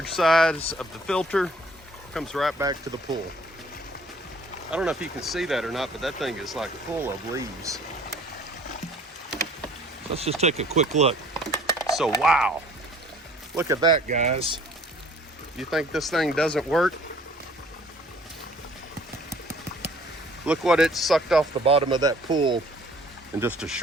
size of the filter comes right back to the pool. I don't know if you can see that or not, but that thing is like full of leaves. Let's just take a quick look. So wow, look at that, guys. You think this thing doesn't work? Look what it sucked off the bottom of that pool in just a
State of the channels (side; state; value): both; normal; correlation 0.54